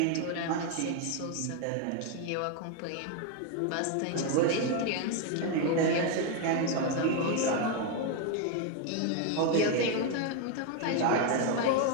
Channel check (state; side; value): different; both; correlation 0.01